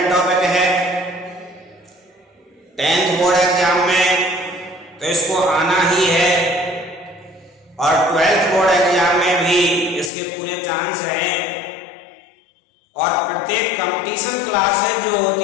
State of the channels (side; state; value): right; drops out; at 10.1 s